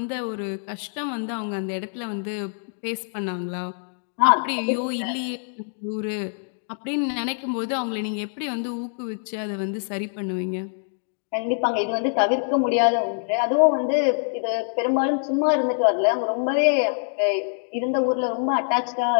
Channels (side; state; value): right; silent; digital silence